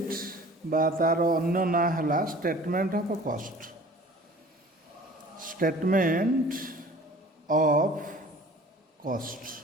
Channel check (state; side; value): normal; both; correlation 0.47